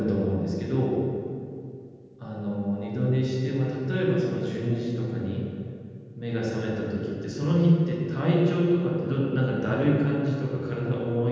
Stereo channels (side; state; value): both; identical; correlation 1.00